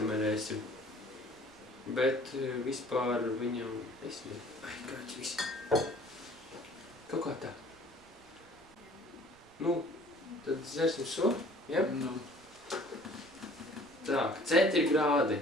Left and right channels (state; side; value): noise; right; rumble, 28 dB below the sound